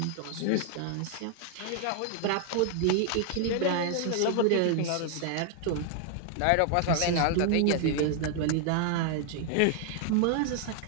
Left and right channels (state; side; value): different; both; correlation 0.00